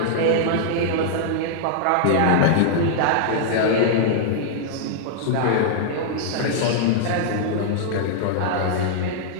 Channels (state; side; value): different; both; correlation -0.01